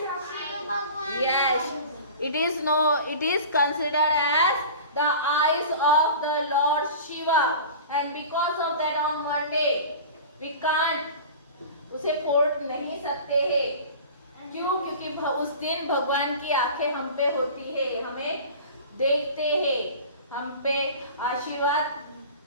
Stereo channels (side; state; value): both; inverted; correlation -0.38